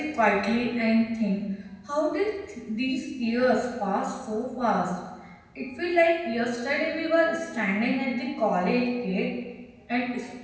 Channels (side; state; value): both; identical; correlation 1.00